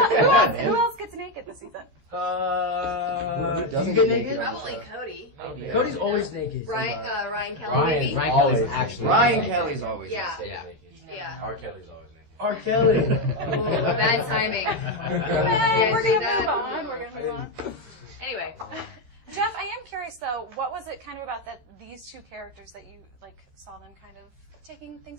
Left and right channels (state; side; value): late; left; 13 ms